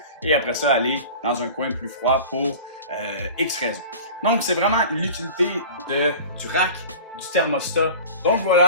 et après ça aller dans un coin plus froid pour X raisons. Donc c'est vraiment l'utilité du rack, du thermostat. Donc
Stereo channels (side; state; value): both; inverted; correlation -0.37